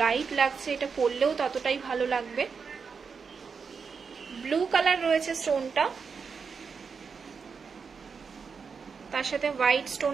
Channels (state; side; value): quieter; left; 5.6 dB